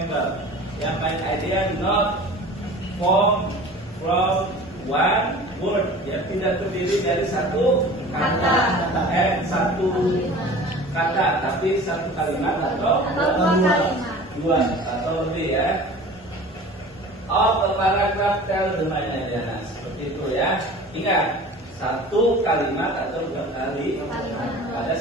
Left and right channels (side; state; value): both; normal; correlation 0.41